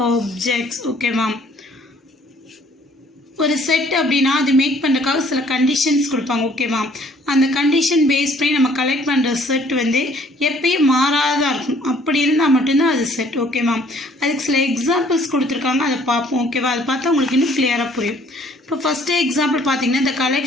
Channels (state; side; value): normal; both; correlation 0.59